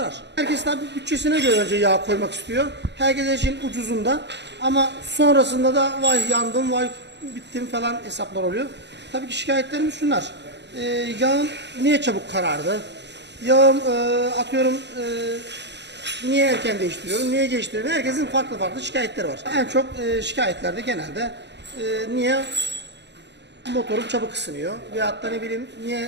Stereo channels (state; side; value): late; left; 0.51 ms